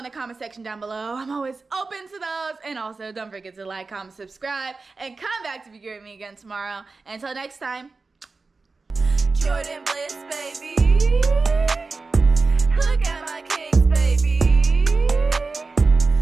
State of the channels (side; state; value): left; quieter; 4.0 dB